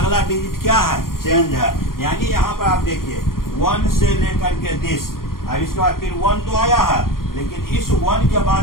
डिजिट क्या है, चेंज है। यानी यहाँ पर आप देखिए 1 से लेकर के 10, अब इसके बाद फिर 1 तो आया है, लेकिन इस 1 के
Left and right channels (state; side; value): late; right; 0.92 ms